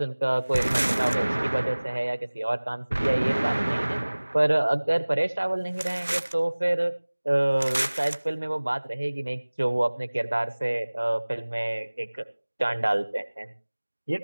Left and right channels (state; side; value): inverted; both; correlation -1.00